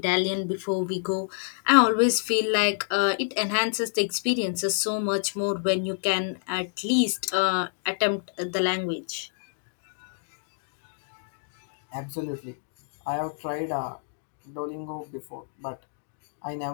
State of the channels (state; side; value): silent; right; digital silence